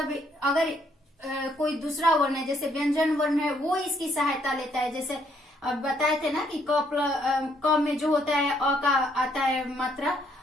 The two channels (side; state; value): both; normal; correlation 0.70